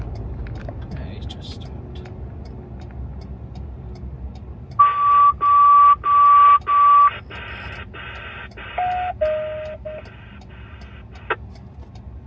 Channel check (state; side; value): identical; both; correlation 1.00